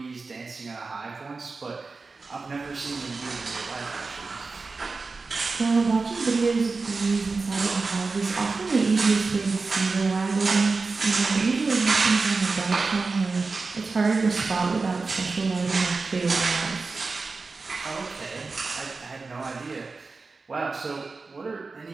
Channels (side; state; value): left; quieter; 4.1 dB